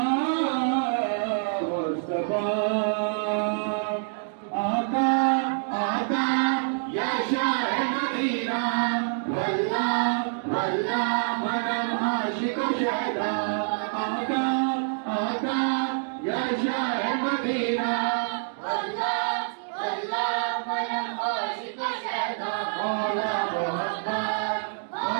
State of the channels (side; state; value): left; silent; digital silence